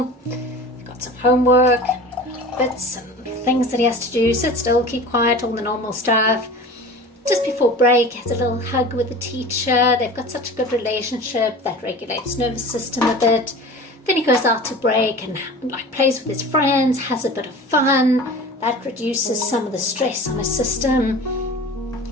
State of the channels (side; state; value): both; normal; correlation 0.38